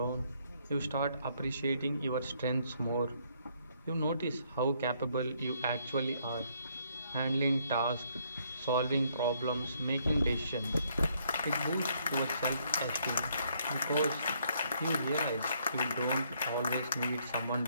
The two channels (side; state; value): both; inverted; correlation -0.69